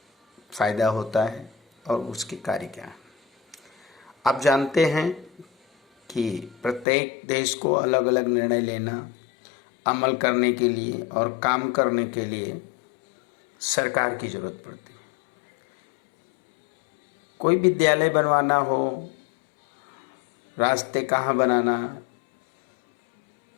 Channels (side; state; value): right; drops out; at 6.9 s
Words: फ़ायदा होता है और उसके कार्य क्या है। आप जानते हैं कि प्रत्येक देश को अलग अलग निर्णय लेना, अमल करने के लिए और काम करने के लिए सरकार की ज़रूरत पड़ती है। कोई विद्यालय बनवाना हो, रास्ते कहाँ बनाना,